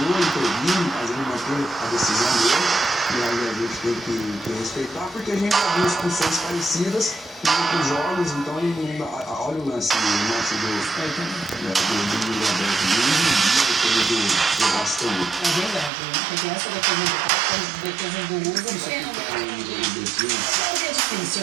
intervindo, fazendo manter a decisão dele. E aí a gente tem que respeitar, porque a gente já viu expulsões parecidas em outros jogos, então olha o lance do Bastão. É verdade, né? Porque essa defesa do Pato, a defesa do Hugo, é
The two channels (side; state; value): left; drops out; at 15.9 s